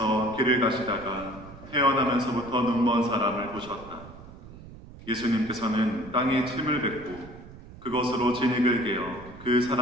길을 가시다가 태어나면서부터 눈먼 사람을 보셨다. 예수님께서는 땅에 침을 뱉고 그것으로 진흙을 개어 그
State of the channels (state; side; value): noise; right; rumble, 17 dB below the sound